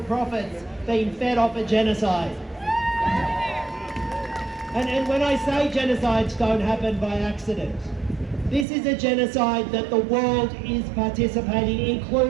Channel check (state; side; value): drops out; left; at 8.7 s